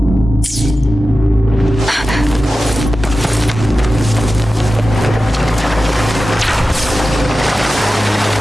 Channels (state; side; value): normal; both; correlation 0.93